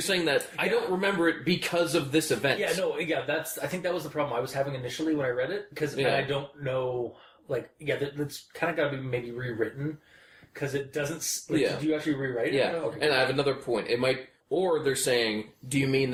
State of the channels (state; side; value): identical; both; correlation 1.00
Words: saying that I don't remember it because of this event. I think that was the problem I was having initially when I read it, because I don't know, that's kind of got to be maybe rewritten, because it doesn't, did you actually rewrite it? Yeah, okay. And I have another point. It might, or they're saying, do you mean